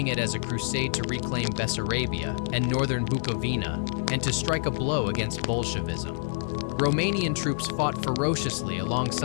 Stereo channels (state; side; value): silent; right; digital silence